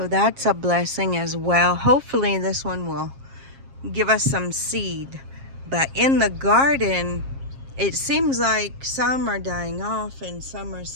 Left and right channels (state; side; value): late; left; 7.4 ms